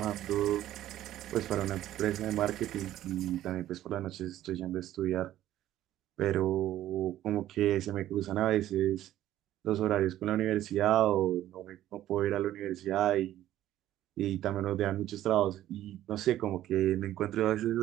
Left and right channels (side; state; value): left; quieter; 13.2 dB